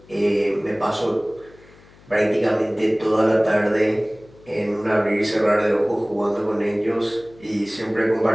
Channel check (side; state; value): left; noise; hum, 26 dB below the sound